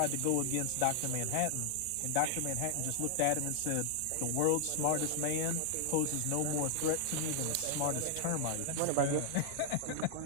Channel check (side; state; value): both; different; correlation 0.00